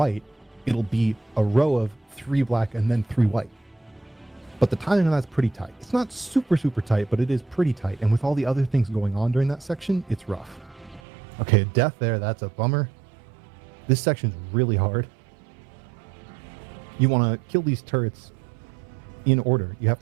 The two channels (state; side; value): drops out; left; at 11.0 s